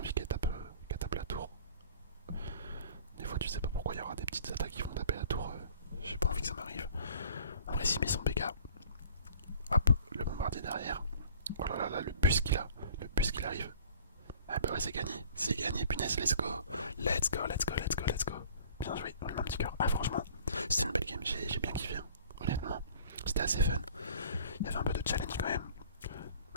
qu'elle tape la tour. Des fois, tu sais pas pourquoi il y aura des petites attaques qui vont taper la tour. J'ai pas envie que ça m'arrive. En vrai, s'il met son PK. Hop, le bombardier derrière. Oh là là, le bus qu'il a. Arrive. Ah bah ouais, c'est gagné, punaise, let's go. Bien joué, on lui met un petit cœur. Ah franchement, c'était une belle game, j'ai bien kiffé, hein. Honnêtement. C'était était assez fun. Il y avait un peu de challenge quand même.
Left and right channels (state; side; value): inverted; both; correlation -0.49